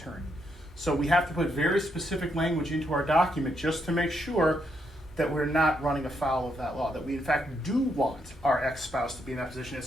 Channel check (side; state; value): both; normal; correlation 0.77